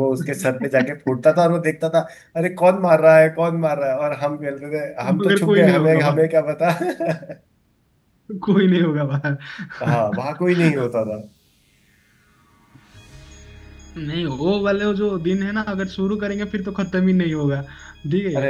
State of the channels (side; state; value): both; identical; correlation 1.00